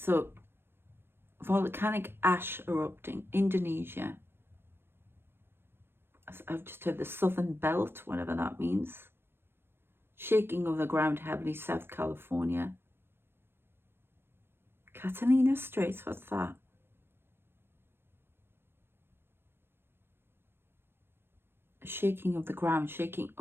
volcanic ash erupting. Indonesia. I've just heard the southern belt, whatever that means. Shaking of the ground heavily, South California. Catalina Straits, what's that? A shaking of the ground, shaking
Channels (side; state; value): left; late; 0.11 ms